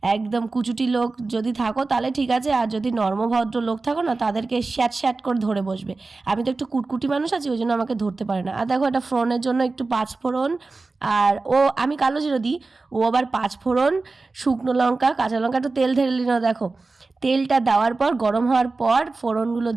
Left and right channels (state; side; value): quieter; left; 3.7 dB